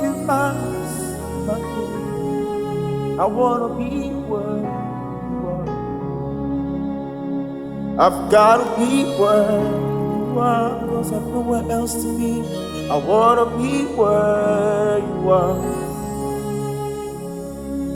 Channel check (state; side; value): identical; both; correlation 1.00